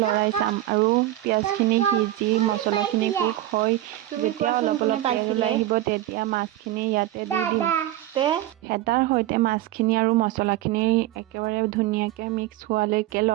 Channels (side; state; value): left; quieter; 14.5 dB